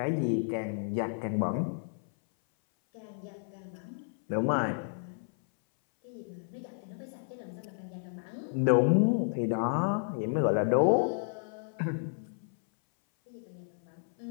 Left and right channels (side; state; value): right; silent; 57 dB below the other